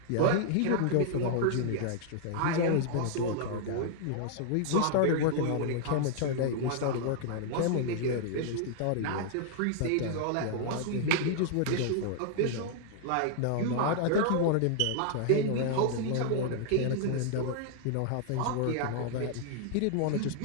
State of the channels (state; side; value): different; both; correlation 0.00